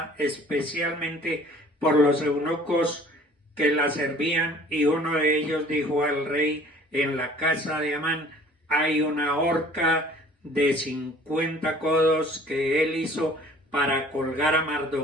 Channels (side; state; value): both; normal; correlation 0.51